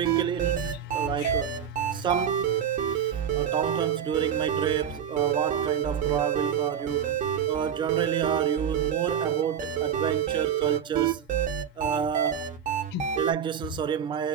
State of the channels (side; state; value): left; quieter; 8.3 dB